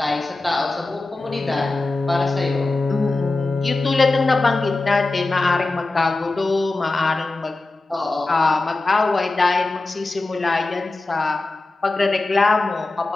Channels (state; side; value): quieter; right; 3.2 dB